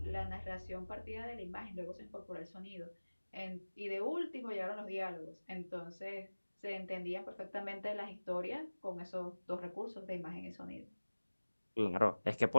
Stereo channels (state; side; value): inverted; both; correlation -1.00